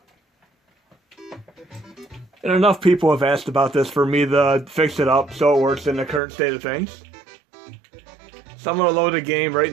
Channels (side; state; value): left; drops out; at 6.2 s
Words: And enough people have asked about this for me to fix it up so it works in the current state of things. So I'm going to load a game right